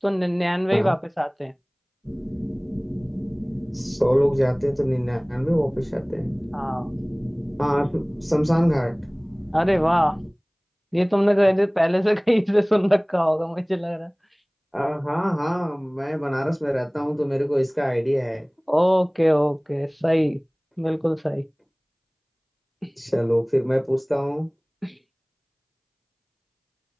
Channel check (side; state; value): both; identical; correlation 1.00